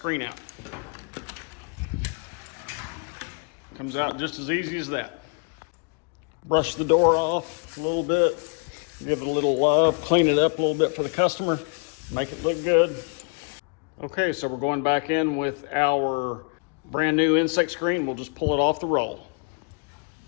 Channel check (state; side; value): quieter; right; 37.2 dB